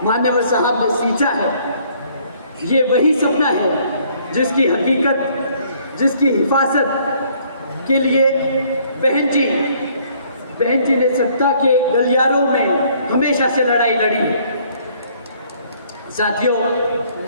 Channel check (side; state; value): both; inverted; correlation -0.62